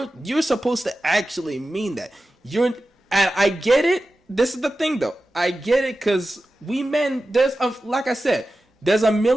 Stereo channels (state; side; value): normal; both; correlation 0.94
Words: You're supposed to actually mean that. And I get it. This is the thing though. I get it, because we men, like I said, there's a